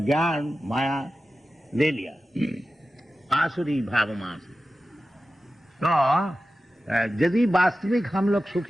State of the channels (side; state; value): both; normal; correlation 0.94